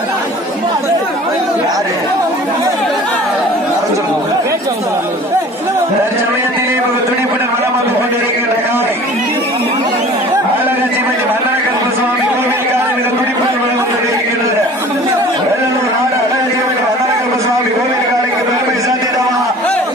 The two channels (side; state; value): both; normal; correlation 0.45